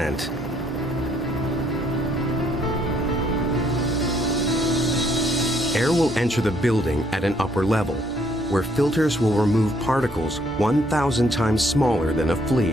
Air will enter the building at an upper level, where filters will remove particles 1,000 times smaller than a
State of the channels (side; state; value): both; normal; correlation 0.68